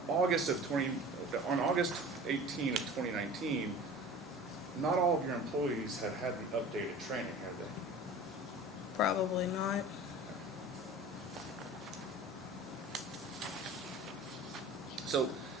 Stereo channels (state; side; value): normal; both; correlation 0.40